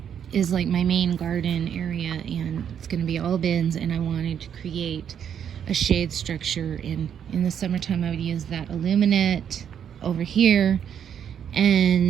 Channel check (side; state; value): left; quieter; 8.6 dB